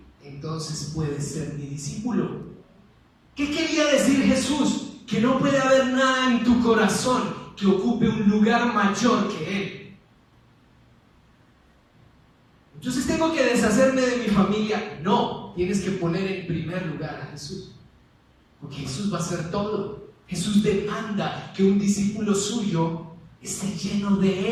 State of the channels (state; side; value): identical; both; correlation 1.00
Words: entonces puedes ser mi discípulo. ¿Qué quería decir Jesús? Que no puede haber nada en tu corazón que ocupe un lugar mayor que Él. Entonces tengo que deshacerme de mi familia. No, tienes que poner en primer lugar a Jesús, porque Jesús va a hacer todo. Jesús demanda que un discípulo suyo esté lleno